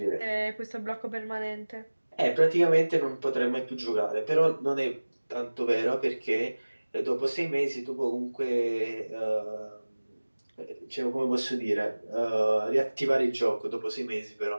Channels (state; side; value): inverted; both; correlation -1.00